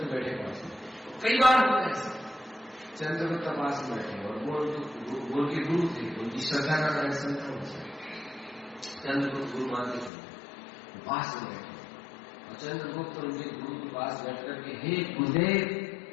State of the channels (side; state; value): right; drops out; at 10.1 s